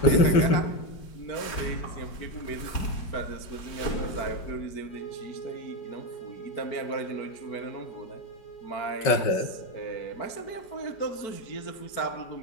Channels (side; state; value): right; late; 5.3 ms